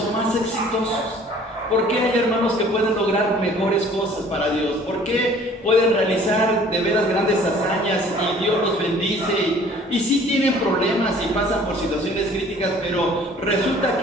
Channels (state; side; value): normal; both; correlation 0.52